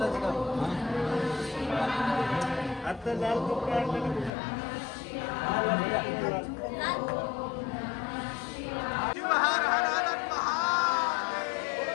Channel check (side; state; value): right; drops out; at 4.3 s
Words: आता लाल कपडा